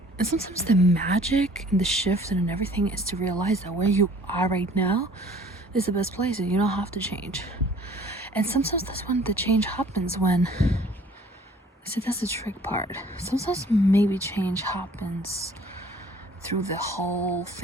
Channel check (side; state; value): both; normal; correlation 0.53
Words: And sometimes the magic and the shift and everything is to realize that where you are right now is the best place and you don't have to change. And sometimes that's when the change happens, when, see, that's the trick part. Sometimes maybe change happens through the whole